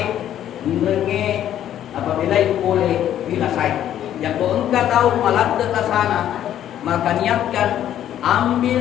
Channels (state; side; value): quieter; right; 11.2 dB